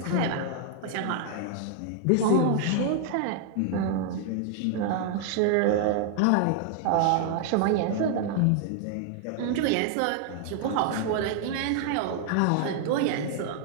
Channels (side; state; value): both; different; correlation 0.00